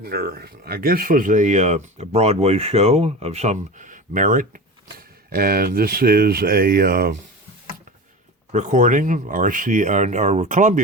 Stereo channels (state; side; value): normal; both; correlation 0.30